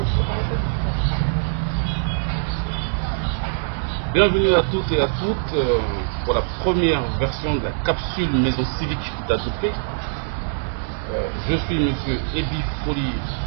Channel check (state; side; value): silent; left; digital silence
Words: Bienvenue à tous et à toutes pour la première version de la capsule maison civique d'Atopé. Je suis monsieur Ebi Folie